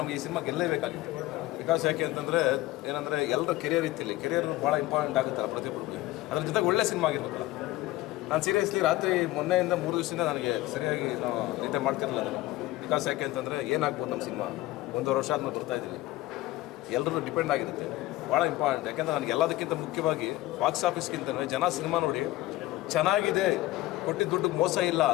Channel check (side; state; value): right; quieter; 17.3 dB